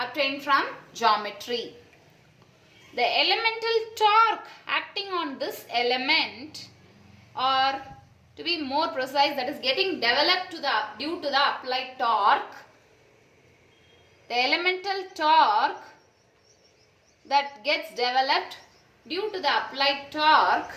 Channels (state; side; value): identical; both; correlation 1.00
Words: from geometry. The elemental torque acting on this element, or to be more precise, that is getting developed due to the applied torque, the elemental torque that gets developed due to the applied torque